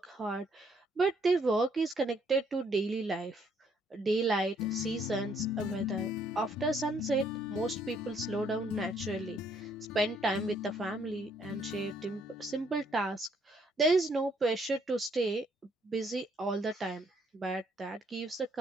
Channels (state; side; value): normal; both; correlation 0.67